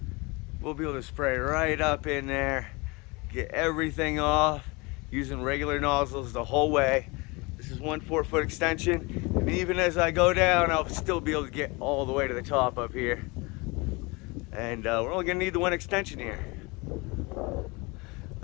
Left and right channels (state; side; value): quieter; right; 26.4 dB